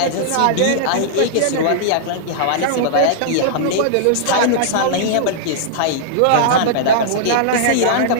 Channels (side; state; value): both; different; correlation -0.02